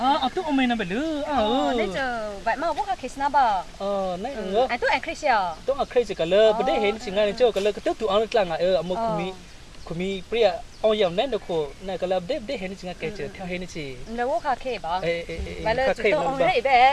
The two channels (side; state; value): both; identical; correlation 1.00